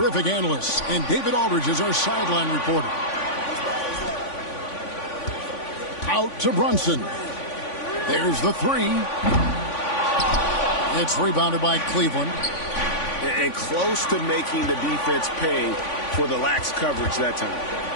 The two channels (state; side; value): late; right; 3.5 ms